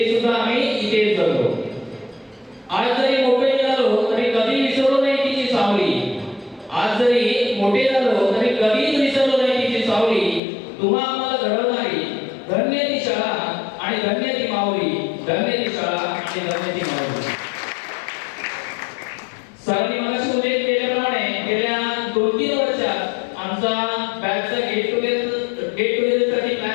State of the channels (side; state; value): right; drops out; at 10.4 s